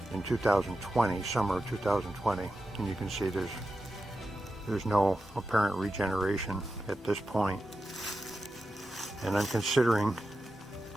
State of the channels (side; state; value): both; normal; correlation 0.91